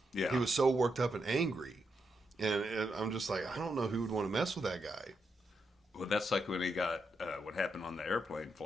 Yeah. He was so worked up and angry. And I'm just like, I don't know who would want to mess with that guy. Well, that's like when he got what happened on the airplane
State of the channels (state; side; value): normal; both; correlation 0.82